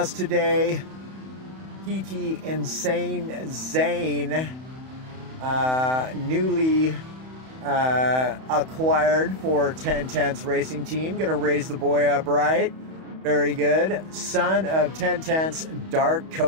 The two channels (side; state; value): left; late; 31 ms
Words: today. PT Insane Zane, newly acquired for 1010's racing team. Gonna raise the boy up right. Very good. Son of 1010's Dark